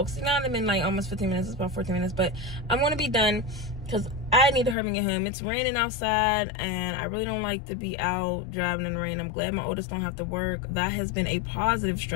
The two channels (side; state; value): right; drops out; at 4.8 s